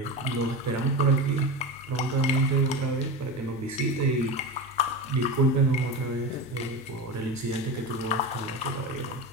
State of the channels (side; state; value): both; normal; correlation 0.23